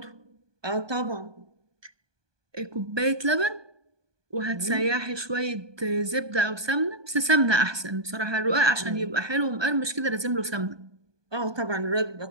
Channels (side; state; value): left; late; 1.2 ms